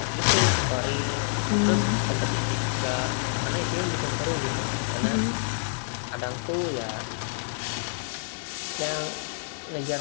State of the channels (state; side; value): silent; right; digital silence